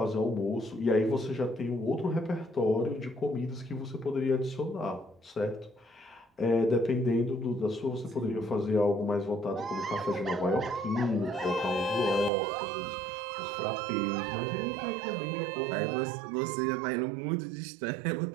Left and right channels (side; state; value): left; drops out; at 12.3 s